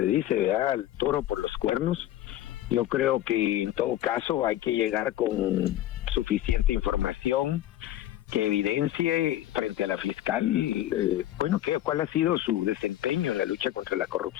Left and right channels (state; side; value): quieter; right; 13.2 dB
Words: dice, ¿verdad?, al toro por los cuernos. Yo creo que en todo caso hay que llegar con suficiente información que evidencie frente a la fiscal, cuál ha sido su desempeño en la lucha contra la